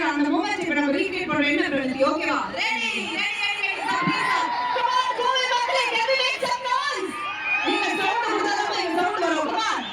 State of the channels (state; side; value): identical; both; correlation 1.00